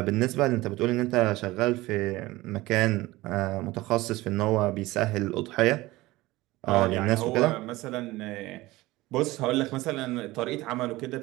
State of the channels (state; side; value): quieter; left; 19.2 dB